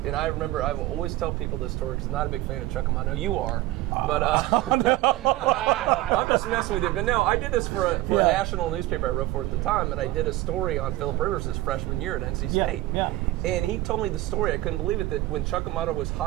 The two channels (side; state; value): left; quieter; 17.2 dB